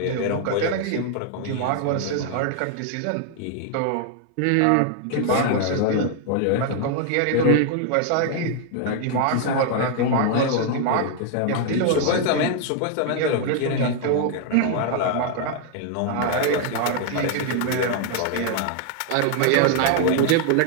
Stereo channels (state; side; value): different; both; correlation 0.00